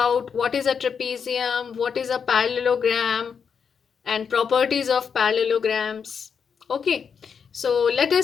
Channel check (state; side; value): quieter; right; 6.6 dB